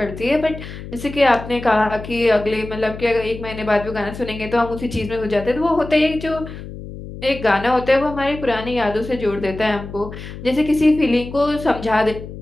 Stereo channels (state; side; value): noise; left; hum, 12 dB below the sound